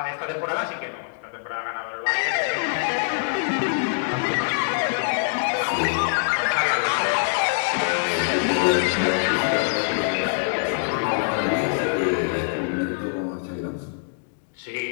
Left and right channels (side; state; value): right; silent; digital silence